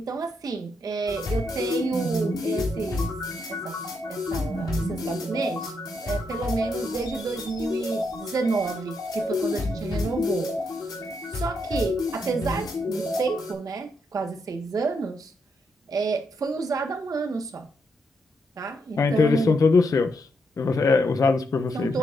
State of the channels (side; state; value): both; normal; correlation 0.79